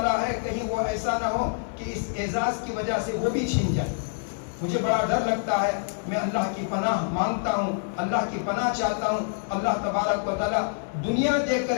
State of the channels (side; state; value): right; silent; digital silence